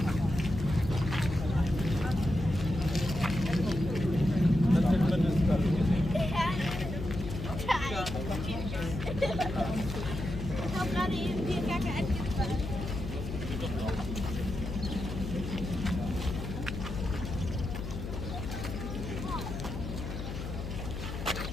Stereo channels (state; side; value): noise; left; hum, 7 dB below the sound